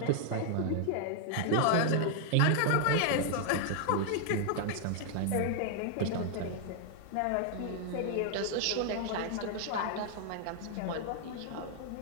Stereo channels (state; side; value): different; both; correlation 0.00